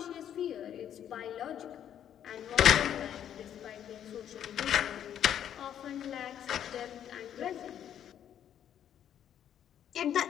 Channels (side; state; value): right; quieter; 9.9 dB